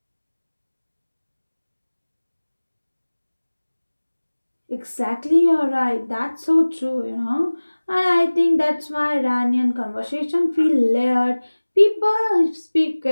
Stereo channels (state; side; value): inverted; both; correlation -1.00